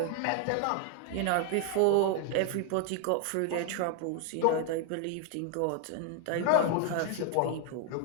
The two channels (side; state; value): both; different; correlation 0.01